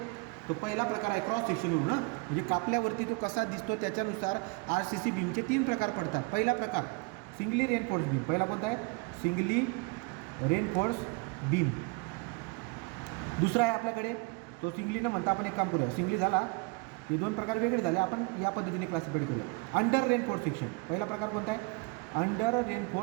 तो पहिला प्रकार आहे क्रॉस सेक्शनवरून ना, म्हणजे कापल्यावरती तो कसा दिसतो त्याच्यानुसार आरसीसी बीमचे 3 प्रकार पडतात. पहिला प्रकार सिंगली रेनफोर्स बीम. पहिला कोणता आहे? Singly reinforce beam. दुसरा आहे आपल्याकडे तो सिंगली न म्हणता आपण एक काम करूया. सिंगली झाला, हे 2 प्रकार वेगळे झाले, आपण या पद्धतीने क्लासिफाईड करूया. Under reinforce section. पहिला प्रकार कोणता आहे? Under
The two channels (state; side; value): quieter; left; 28.5 dB